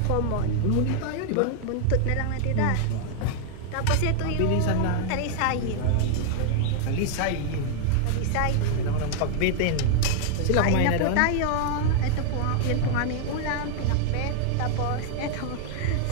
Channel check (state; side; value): different; both; correlation 0.00